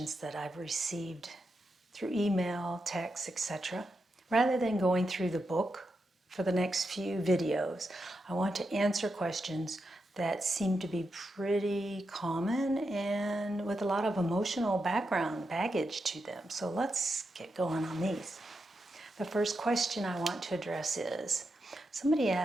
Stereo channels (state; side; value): normal; both; correlation 0.86